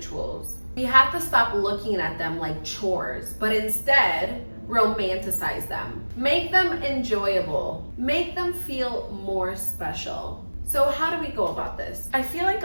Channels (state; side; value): inverted; both; correlation -1.00